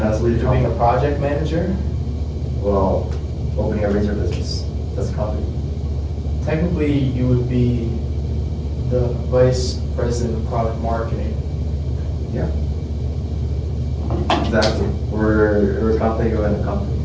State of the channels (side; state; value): both; identical; correlation 1.00